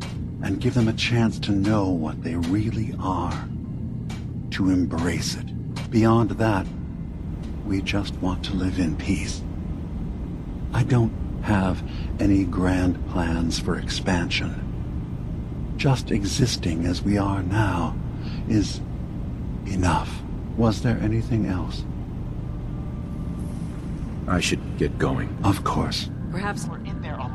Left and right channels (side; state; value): both; identical; correlation 1.00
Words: and give them a chance to know what they really are. To embrace it. Beyond that, we just want to live in peace. I don't have any grand plans for expansion. Just existing as we are now is enough. Was there anything else? I should get going. Of course. Perhaps We're in there a